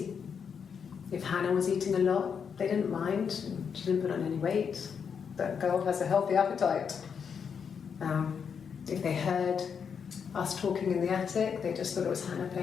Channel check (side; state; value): right; quieter; 6.7 dB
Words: If Hannah was eating a lot, they didn't mind. She didn't put on any weight. That girl has a healthy appetite. If they heard us talking in the attic, they just thought it was Hannah